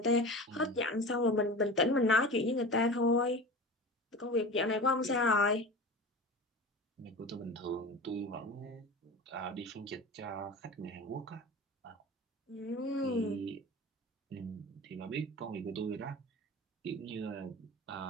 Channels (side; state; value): both; normal; correlation 0.32